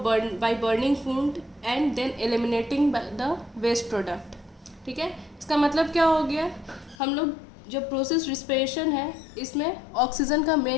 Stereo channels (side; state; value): right; drops out; at 7.0 s